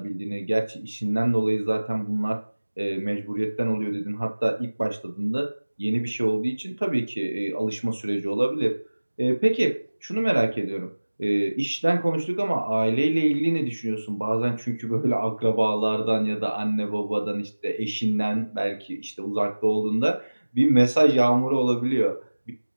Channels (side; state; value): both; inverted; correlation -1.00